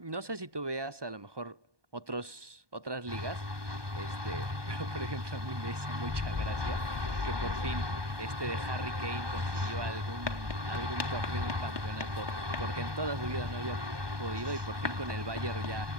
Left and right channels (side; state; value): left; late; 1.2 ms